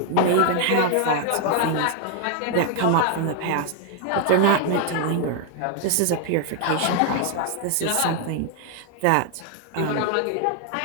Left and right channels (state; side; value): different; both; correlation 0.00